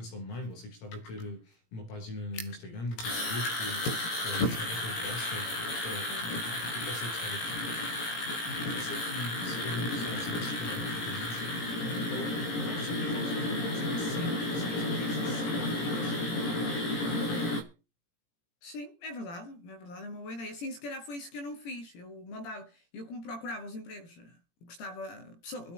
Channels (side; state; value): right; late; 17 ms